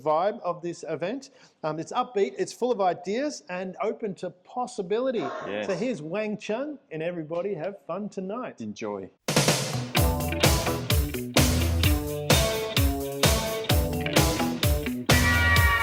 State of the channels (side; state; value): both; identical; correlation 1.00